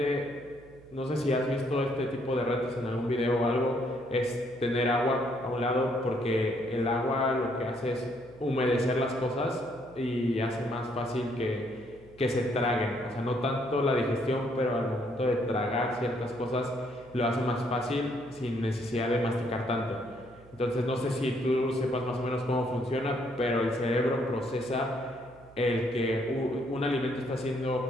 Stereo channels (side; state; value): right; noise; hum, 24 dB below the sound